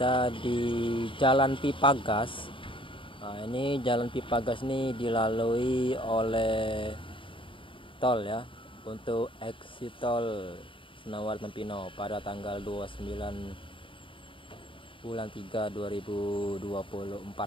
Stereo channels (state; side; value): late; right; 0.25 ms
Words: di Jalan Pipa Gas. Nah, ini Jalan Pipa Gas ini dilalui oleh tol ya, untuk exit tol Senawer Tempino pada tanggal 29 bulan 3 2024.